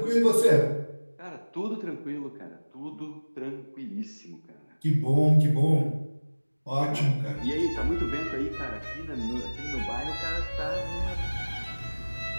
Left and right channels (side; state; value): both; inverted; correlation -1.00